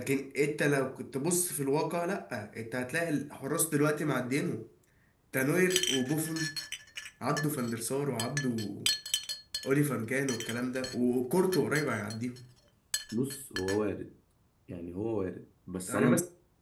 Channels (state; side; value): identical; both; correlation 1.00